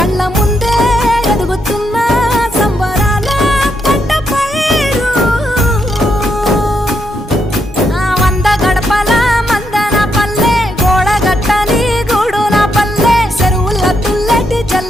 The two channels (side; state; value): both; normal; correlation 0.79